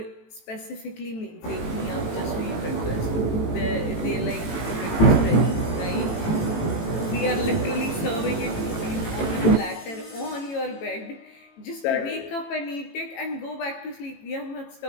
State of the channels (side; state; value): right; late; 18 ms